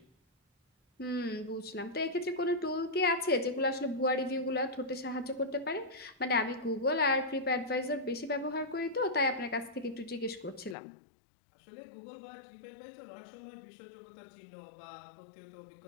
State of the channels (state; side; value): drops out; right; at 10.8 s